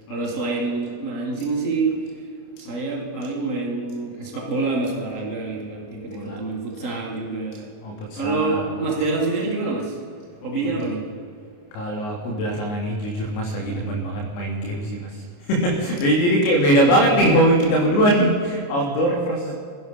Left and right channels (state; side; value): late; right; 29 ms